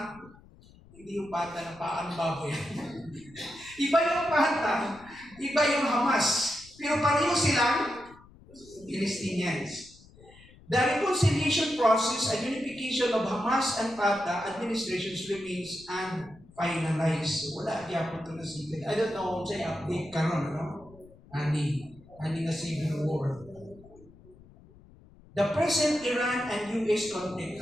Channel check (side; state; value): left; noise; rumble, 24 dB below the sound